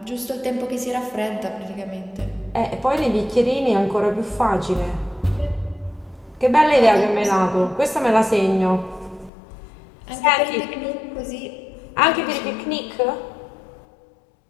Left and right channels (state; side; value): drops out; right; at 9.3 s